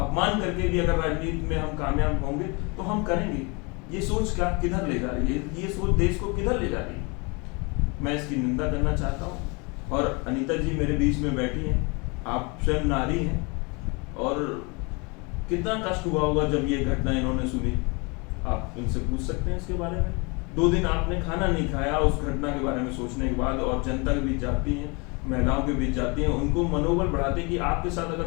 करके भी अगर राजनीति में हम कामयाब होंगे तो हम करेंगे। ये सोच क्या किधर ले जा रही है? ये सोच देश को किधर ले जा रही है? मैं इसकी निंदा करना चाहता हूँ। और अनीता जी मेरे बीच में बैठी हैं, आप स्वयं नारी हैं, और कितना कष्ट हुआ होगा जब ये घटना इन्होंने सुनी। आप इनसे पूछ सकते हैं इसके बारे में। 2 दिन आपने खाना नहीं खाया उस घटना के बारे में सोचने के बाद, और जनता के बीच जाती हैं, महिलाओं के बीच जाती हैं, उनको मनोबल बढ़ाते हैं कि आपके साथ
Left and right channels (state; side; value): quieter; right; 29.7 dB